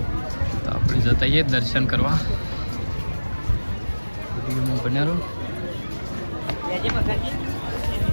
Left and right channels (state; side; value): inverted; both; correlation -1.00